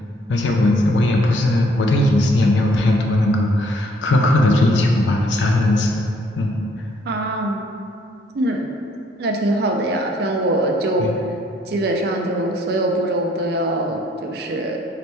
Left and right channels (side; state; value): both; normal; correlation 0.65